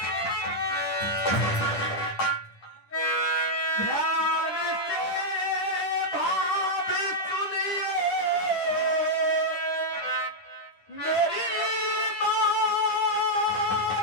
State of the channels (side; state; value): right; late; 10 ms